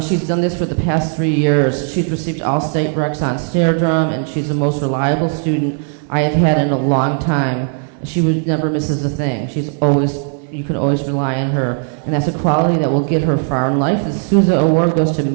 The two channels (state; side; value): silent; left; 55 dB below the other